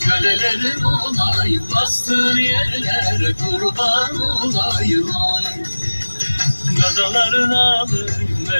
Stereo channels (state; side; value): inverted; both; correlation -1.00